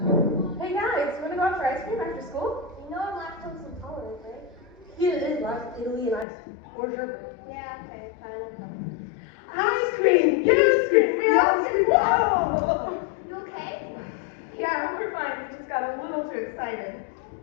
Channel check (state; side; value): drops out; right; at 6.2 s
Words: Hey guys, wanna go out for ice cream after school? You know I'm lactose intolerant, right? Here it is, like Italy and ice cream. Or sherbet. Yeah, okay, fine. Ice cream! You scream! We all scream! Whoa! You okay? Yeah, we're fine. We just got a little too excited.